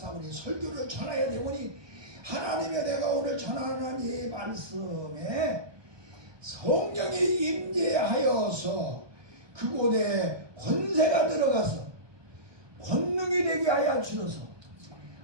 설교를 전해야 되오니 하나님의 내가 오늘 전하는 이 말씀에 성령이 임재하여서 그곳에 권세가 들어가서 권능이 되게 하여 주셔서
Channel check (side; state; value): left; late; 1.2 ms